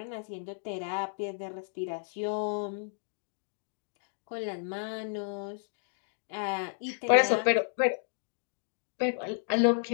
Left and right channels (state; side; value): silent; right; digital silence